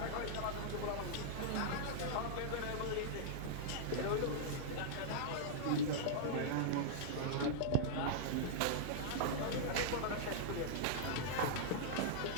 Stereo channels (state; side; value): different; both; correlation -0.02